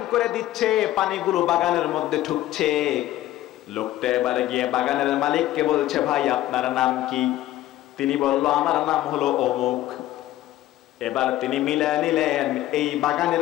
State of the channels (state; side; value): quieter; right; 14.5 dB